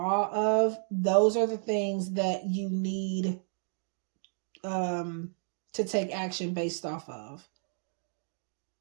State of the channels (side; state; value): left; silent; digital silence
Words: of, those are the things that you need to take action based off of.